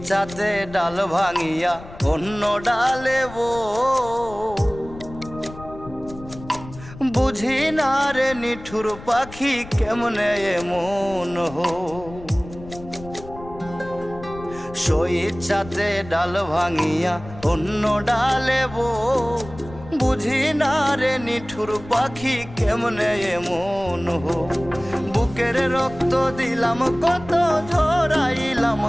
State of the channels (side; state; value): left; noise; rumble, 16 dB below the sound